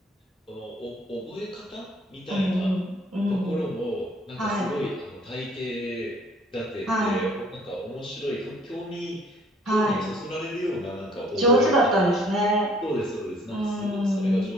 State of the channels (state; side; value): normal; both; correlation 0.57